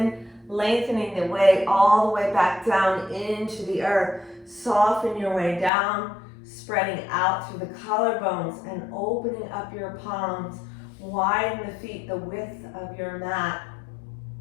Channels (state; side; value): drops out; right; at 5.7 s